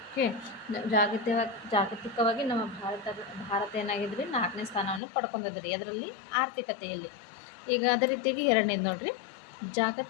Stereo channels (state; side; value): drops out; right; at 5.0 s